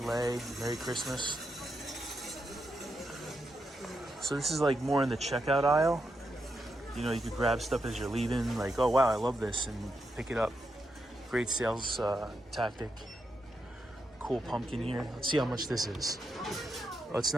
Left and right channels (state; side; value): normal; both; correlation 0.84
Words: Merry Christmas. So this is like more in the checkout aisle. You know, you could grab stuff as you're leaving. Like, oh wow, I love this, and pick it up. Great sales tactic. Cool pumpkin here. Let's see how much this is. Oh, it's